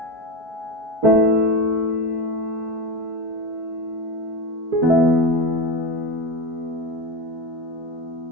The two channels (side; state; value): left; late; 4.6 ms